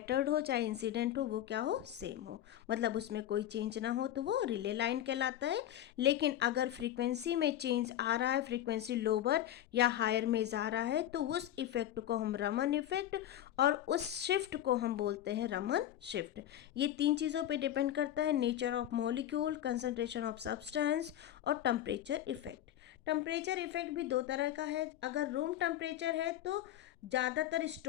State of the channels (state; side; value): quieter; right; 12.1 dB